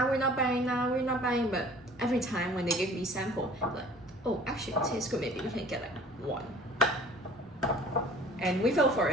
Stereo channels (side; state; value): both; normal; correlation 0.48